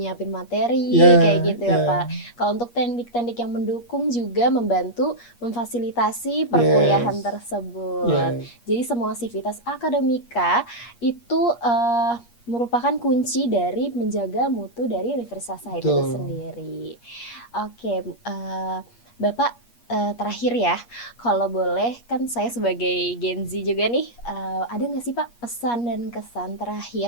materi Ya, kayak gitu ya ya. Pak. Kalau untuk teknik-teknik yang mendukung juga membantu memfasilitasi perkuliahan Yes. tersebut. Yes. Jadi semua Civitas Akademika itu merupakan kunci dari menjaga mutu dari Universitas Sahid itu Betul. sendiri. Oke, Bapak, terakhir ya, kalau boleh kan saya sebagai Gen Z juga nih, ada nggak sih Pak pesan dan kesan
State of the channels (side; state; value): right; late; 8.4 ms